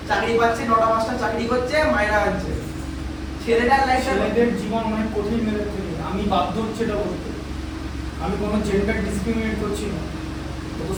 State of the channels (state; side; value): identical; both; correlation 1.00